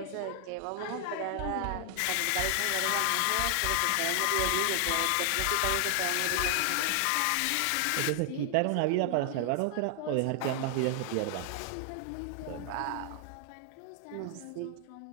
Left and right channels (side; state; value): both; different; correlation 0.00